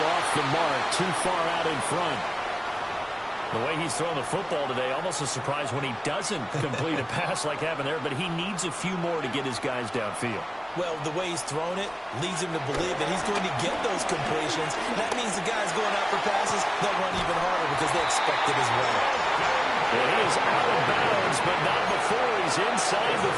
off the mark, too far out in front. The way he's throwing the football today, almost a surprise when he doesn't complete a pass like happened there, but he needs a few more to get his guys downfield. Well, the way he's thrown it leads him to believe that he's going to get those completions. That means the guys going out for passes, they'll run even harder because they expect it as well. And he is out of bounds, but not before he's inside the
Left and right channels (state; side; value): identical; both; correlation 1.00